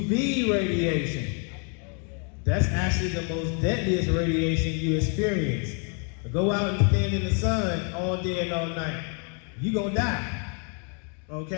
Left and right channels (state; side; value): quieter; right; 39.7 dB